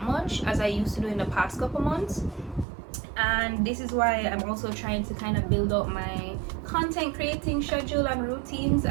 much as I used to do in the past couple months. And this is why I'm also trying to kind of build up my content creating schedule and routines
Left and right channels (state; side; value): drops out; left; at 2.7 s